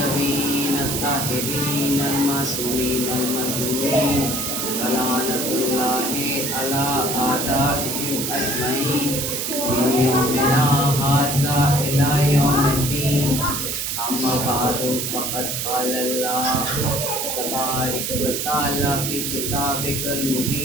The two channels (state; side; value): noise; right; hiss, 2 dB below the sound